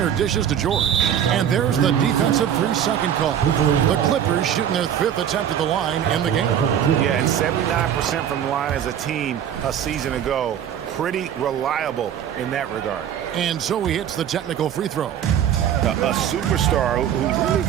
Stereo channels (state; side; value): quieter; left; 9.6 dB